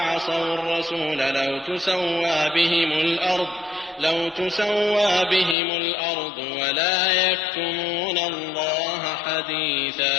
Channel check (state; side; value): drops out; right; at 5.6 s